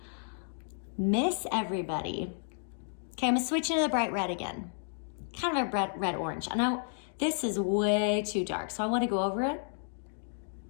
Miss everybody. Okay, I'm gonna switch into the bright red again. Kind of a red-orange. I know this is way too dark, so I wanna go over it.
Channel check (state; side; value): silent; right; digital silence